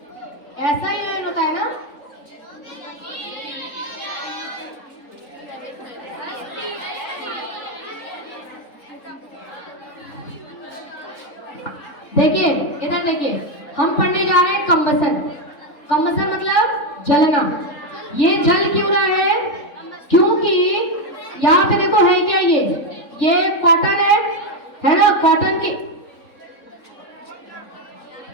ऐसा ही होता है ना। देखिए इधर देखिए, हम पढ़ने जा रहे हैं कंबसन। कंबसन मतलब जलना। ये जल क्यों रहा है? क्योंकि यहाँ पे देखो है क्या, ये कॉटन है ना, कॉटन की।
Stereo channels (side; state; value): right; late; 3.9 ms